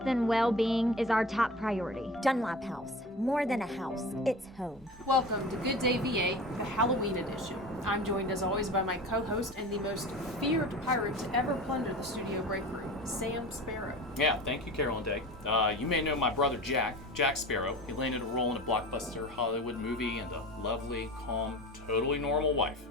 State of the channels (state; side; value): normal; both; correlation 0.34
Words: and well-being is our top priority. Dunlop House, more than a house, it's home. Welcome to Good Day VA, the Halloween edition. I'm joined as always by my co-host and the most feared pirate to ever plunder the studio break room, Sam Sparrow. Yeah, thank you, Carolyn Day. You may know my brother Jack Sparrow. He landed a role in a blockbuster Hollywood movie and a lovely, calm, totally normal wife.